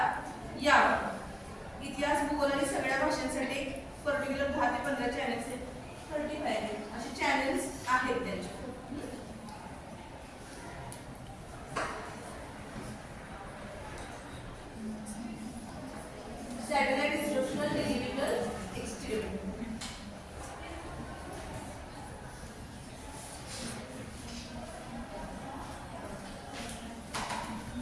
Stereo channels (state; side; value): identical; both; correlation 1.00